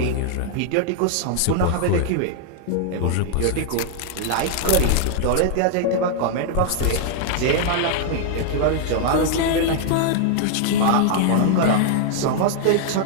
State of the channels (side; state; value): both; different; correlation 0.00